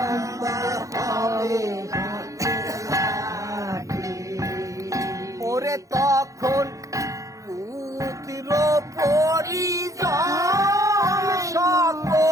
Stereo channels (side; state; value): left; late; 0.16 ms